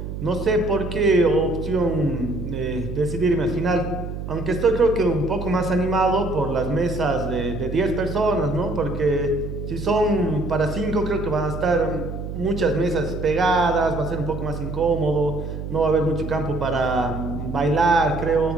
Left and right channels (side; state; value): right; noise; hum, 7 dB below the sound